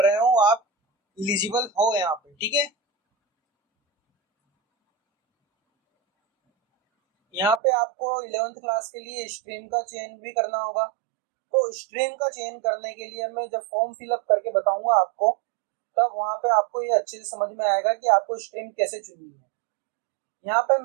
रहे हो, आप एलिजिबल हो यहाँ पे, ठीक है। यहाँ पे आपको 11th क्लास के लिए स्ट्रीम का चयन भी करना होगा। तो स्ट्रीम का चयन करने के लिए मैं जब फॉर्म फिलअप करके बताऊंगा आपको, तब वहां पे आपको ये अच्छे से समझ में आएगा कि आपको स्ट्रीम कैसे चुननी है। यहाँ पे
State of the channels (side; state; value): left; drops out; at 7.6 s